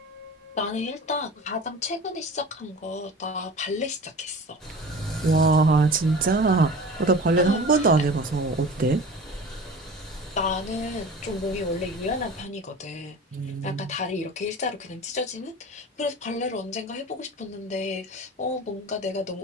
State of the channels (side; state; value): both; normal; correlation 0.37